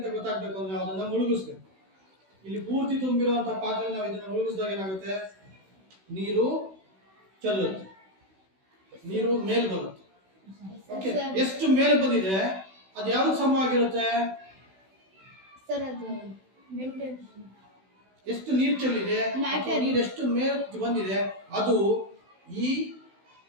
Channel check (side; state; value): left; late; 16 ms